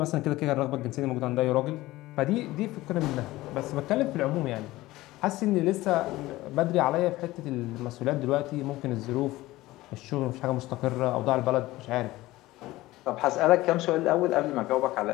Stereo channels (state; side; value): quieter; right; 17.9 dB